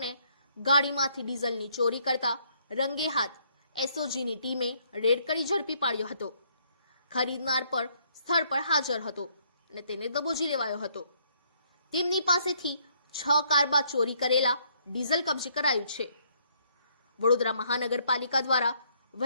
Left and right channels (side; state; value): both; inverted; correlation -0.68